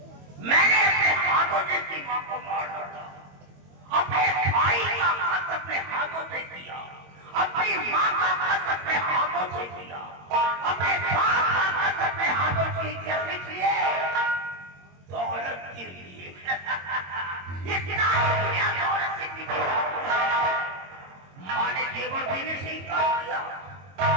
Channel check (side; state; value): left; late; 22 ms